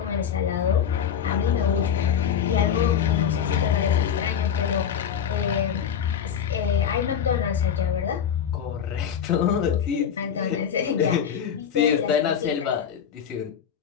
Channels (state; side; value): quieter; right; 8.2 dB